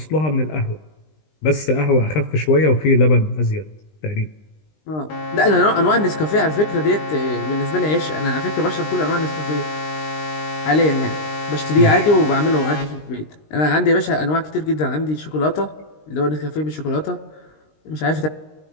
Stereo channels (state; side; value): late; right; 19 ms